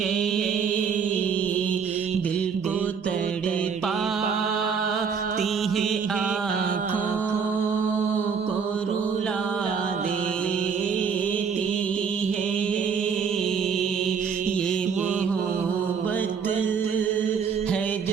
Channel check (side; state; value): left; quieter; 6.3 dB